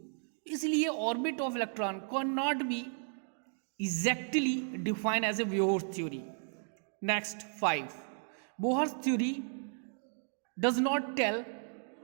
इसलिए orbit of electron can not be exactly defined as a Bohr's theory. Next, 5, Bohr's theory does not tell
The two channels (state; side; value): silent; left; 55 dB below the other